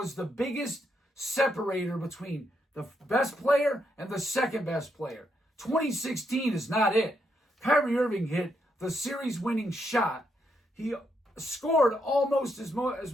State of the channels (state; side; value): normal; both; correlation 0.79